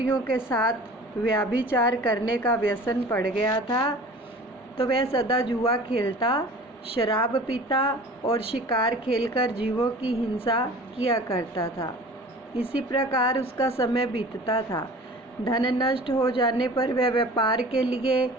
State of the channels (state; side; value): normal; both; correlation 0.43